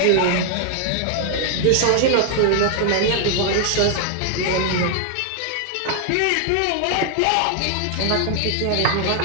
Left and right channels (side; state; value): both; different; correlation 0.00